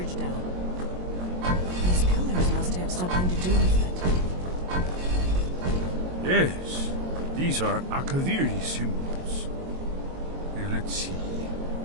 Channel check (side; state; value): left; late; 22 ms